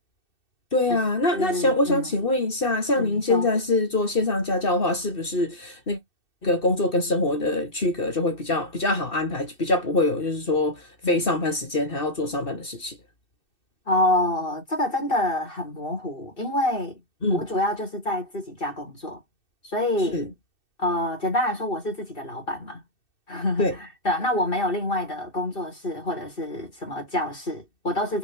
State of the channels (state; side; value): late; right; 2.6 ms